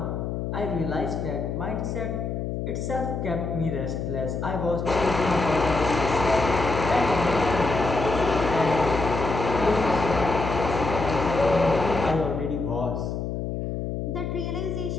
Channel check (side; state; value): left; noise; hum, 3 dB below the sound